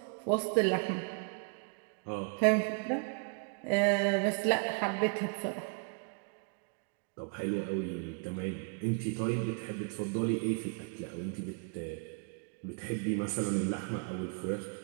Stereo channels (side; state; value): left; quieter; 38.1 dB